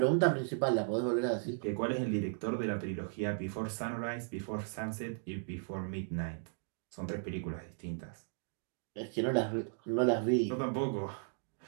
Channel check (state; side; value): silent; left; digital silence